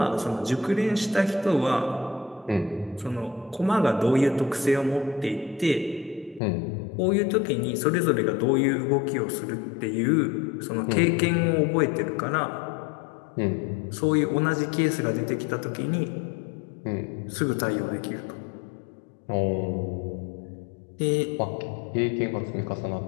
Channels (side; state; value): right; drops out; at 6.4 s